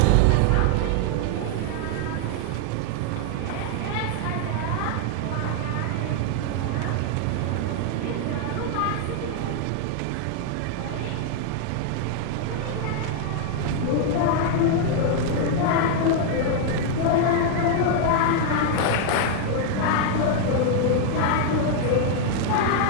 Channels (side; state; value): both; different; correlation 0.00